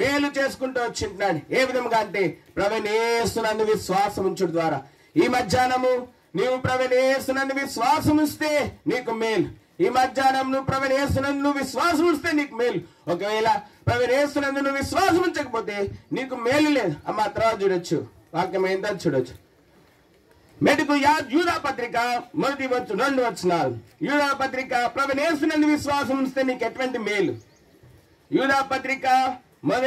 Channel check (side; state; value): both; identical; correlation 1.00